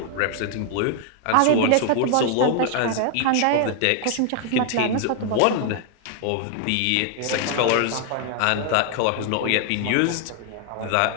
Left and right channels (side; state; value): both; different; correlation 0.00